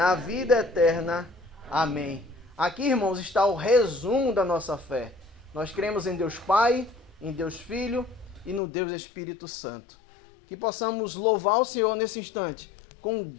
vida eterna. Amém. Aqui, irmãos, está o resumo da nossa fé. Nós cremos em Deus Pai, em Deus Filho e no Deus Espírito Santo. Que possamos louvar o Senhor nesse instante, com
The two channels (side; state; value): right; drops out; at 8.6 s